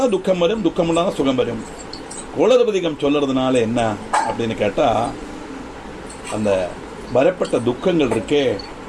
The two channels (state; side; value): identical; both; correlation 1.00